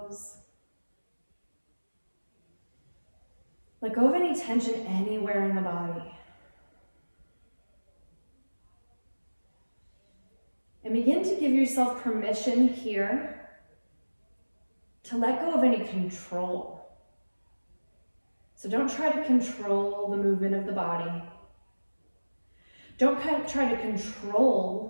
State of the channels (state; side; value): inverted; both; correlation -1.00